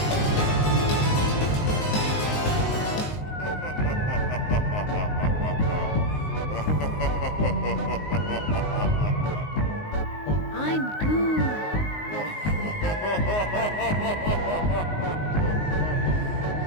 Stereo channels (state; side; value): late; right; 19 ms